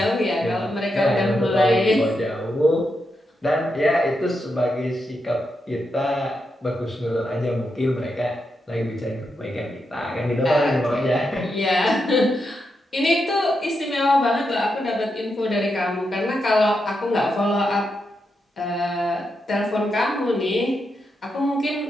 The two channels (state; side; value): normal; both; correlation 0.85